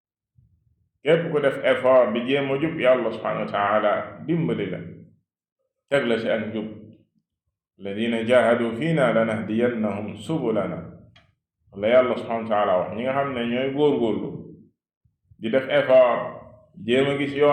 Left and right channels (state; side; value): identical; both; correlation 1.00